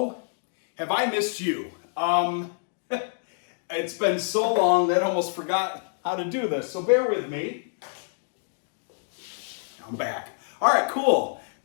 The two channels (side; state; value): right; silent; digital silence